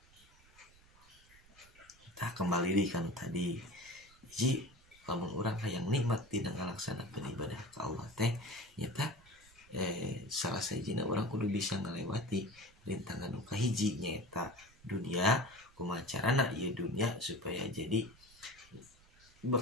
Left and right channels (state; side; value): noise; right; rumble, 27 dB below the sound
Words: Tah kembali di kan tadi hiji, lamun urang hayang nikmat dina ngalaksanakeun ibadah ka Allah teh nyata salah sajina urang kudu bisa ngalewati rintangan nu kahiji nyaeta dunia, kumaha carana ieu dunia supaya jadi